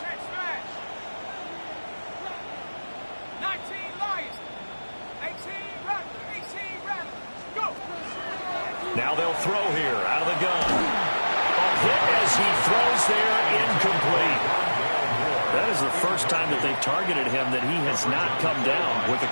check smash. 19 Lions. 18 Rattler, 18 Rattler. Go. Now they'll throw here out of the gun. Hit as he throws there, incomplete. That is the first time that they've targeted him that he has not come down with a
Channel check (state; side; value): inverted; both; correlation -1.00